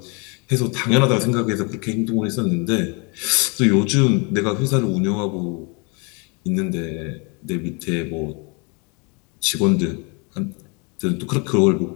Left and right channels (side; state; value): right; quieter; 32.5 dB